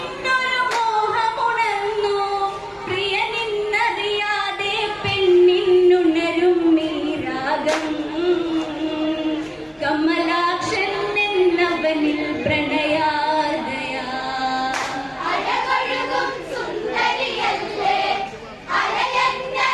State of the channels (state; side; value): identical; both; correlation 1.00